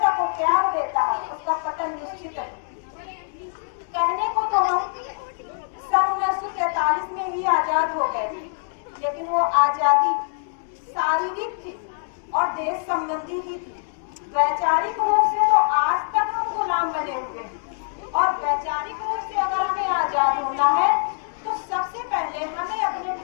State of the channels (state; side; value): silent; right; digital silence